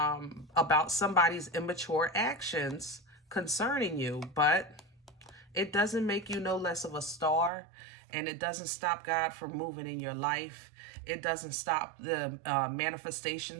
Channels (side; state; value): left; drops out; at 7.5 s